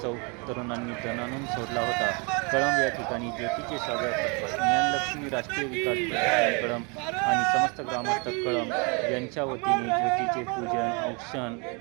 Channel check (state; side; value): quieter; left; 32.3 dB